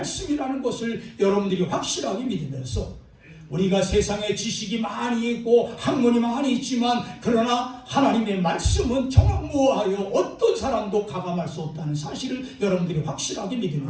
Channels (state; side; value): identical; both; correlation 1.00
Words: 것을 여러분들이 확실하게 믿으면서, 우리가 세상에 지식이 많이 있고 학문이 많이 있지만 그러나 하나님의 말씀은 정확무오하여 어떤 사람도 가감할 수 없다는 사실을 여러분들이 확실하게